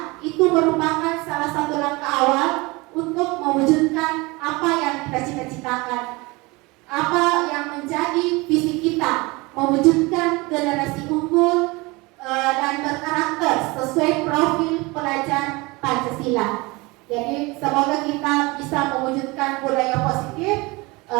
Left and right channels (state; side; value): quieter; left; 24.4 dB